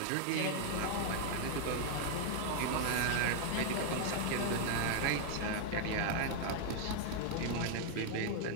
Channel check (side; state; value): both; different; correlation 0.00